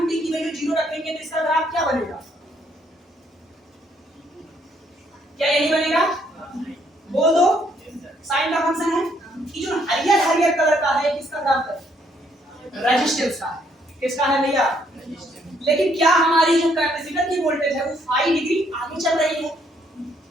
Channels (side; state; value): both; normal; correlation 0.69